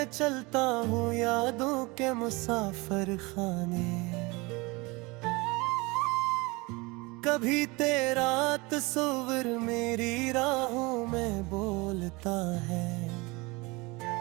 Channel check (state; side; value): quieter; left; 24.9 dB